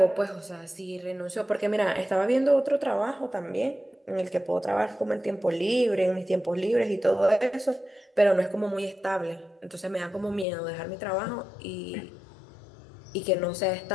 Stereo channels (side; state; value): right; drops out; at 10.5 s